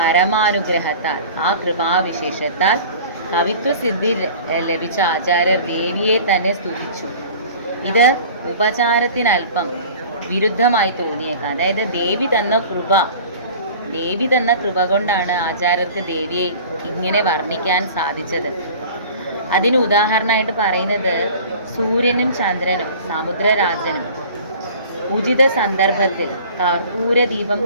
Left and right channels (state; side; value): inverted; both; correlation -0.43